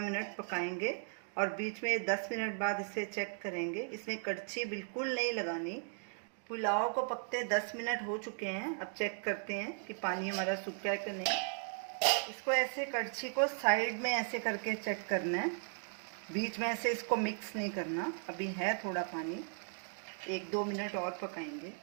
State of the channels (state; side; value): silent; left; 53 dB below the other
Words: मिनट पकाएंगे, और बीच में 10 मिनट बाद इसे चेक करेंगे। इसमें कड़छी बिल्कुल नहीं लगानी। पुलाव को पकते 10 मिनट हो चुके हैं। अब चेक करते हैं कि पानी हमारा सूखा है कि नहीं। इसको ऐसे कड़छी को साइड में ऐसे करके चेक करना है, बीच में ऐसे इसको मिक्स नहीं करना। अभी है थोड़ा पानी, 1-2 मिनट और पकाएंगे।